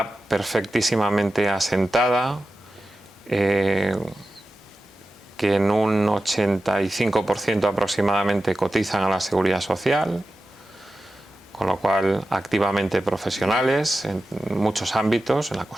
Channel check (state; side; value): normal; both; correlation 0.93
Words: perfectísimamente asentada, que en un 85% aproximadamente cotizan a la Seguridad Social, con lo cual activamente profesionales en muchos ámbitos, en la